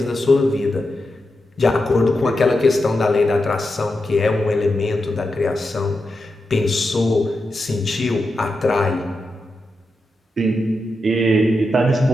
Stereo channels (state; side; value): normal; both; correlation 0.88